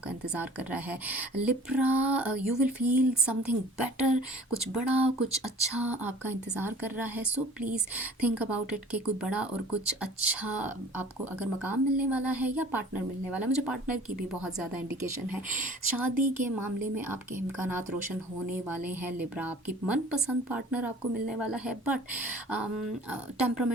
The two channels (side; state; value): both; normal; correlation 0.47